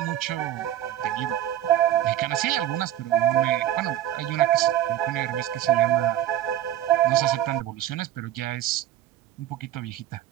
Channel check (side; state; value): left; quieter; 12.0 dB